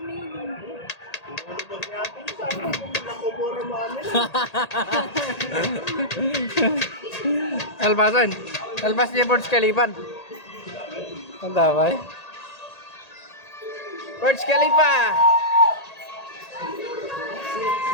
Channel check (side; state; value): right; late; 1.8 ms